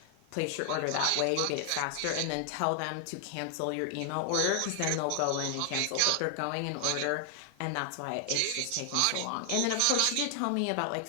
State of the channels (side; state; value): both; different; correlation 0.00